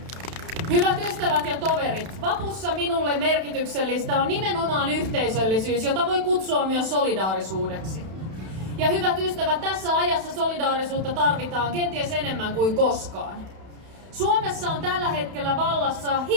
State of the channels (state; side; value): late; left; 31 ms